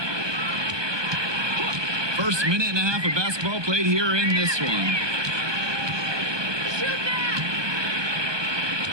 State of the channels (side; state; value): left; late; 1.2 ms